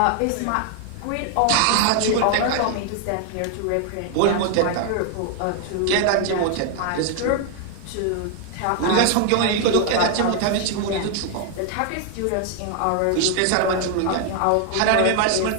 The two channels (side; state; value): both; different; correlation 0.00